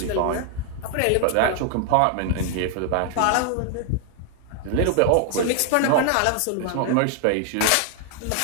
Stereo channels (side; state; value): both; different; correlation 0.00